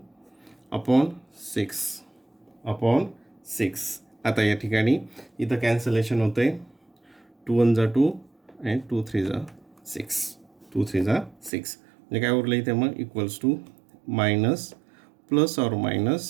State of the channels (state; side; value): drops out; left; at 11.5 s